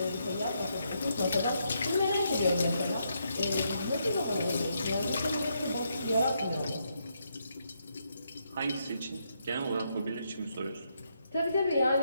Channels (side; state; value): both; inverted; correlation -0.78